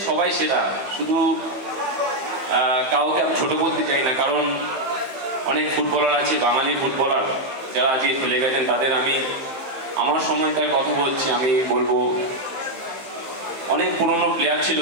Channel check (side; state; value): left; late; 15 ms